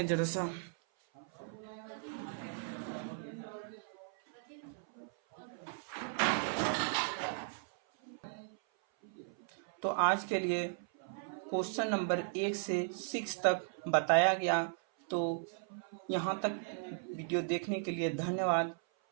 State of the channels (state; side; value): silent; left; 53 dB below the other